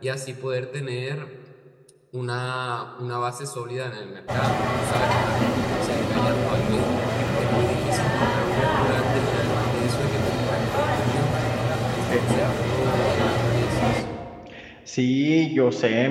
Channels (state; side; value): identical; both; correlation 1.00